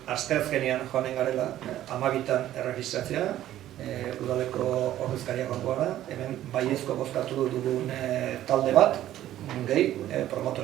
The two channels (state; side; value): quieter; left; 13.0 dB